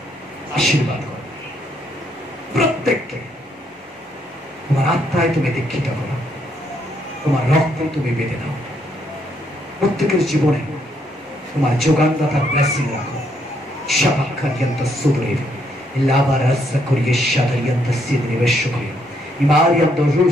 আশীর্বাদ করো প্রত্যেককে, তোমার আত্মায় তুমি দীক্ষিত করো, তোমার রক্ত তুমি বেঁধে দাও। প্রত্যেকের জীবনে তোমার যোগানদাতার ব্লেসিং রাখো। শাবাক্কারিয়ান্ত সুদরেব লাবারাসা করিয়ে শাদারিয়ান্ত সিদরে বেশকরিয়া ইমারিয়ান্ত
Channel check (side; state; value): both; normal; correlation 0.73